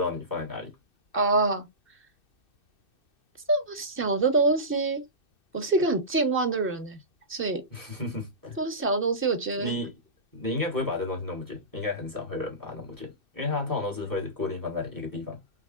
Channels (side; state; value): right; late; 2.6 ms